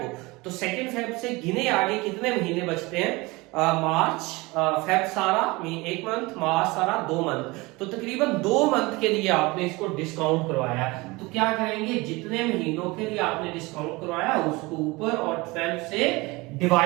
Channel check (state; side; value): quieter; left; 23.4 dB